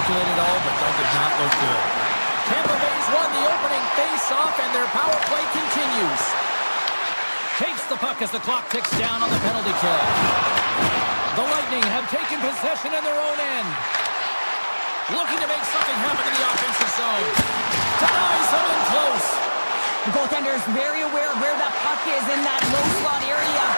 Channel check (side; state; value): both; inverted; correlation -1.00